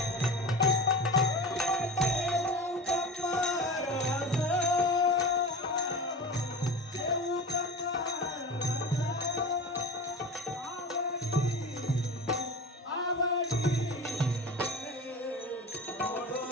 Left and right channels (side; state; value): both; normal; correlation 0.31